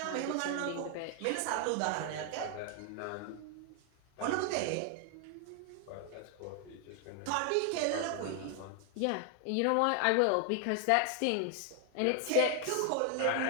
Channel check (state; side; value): different; both; correlation 0.00